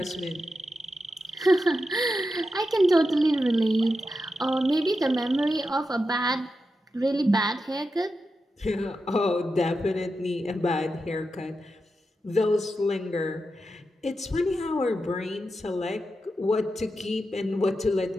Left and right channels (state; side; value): normal; both; correlation 0.89